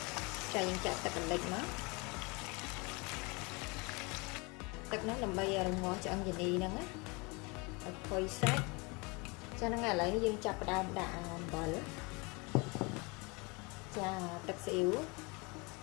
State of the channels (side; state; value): right; quieter; 28.4 dB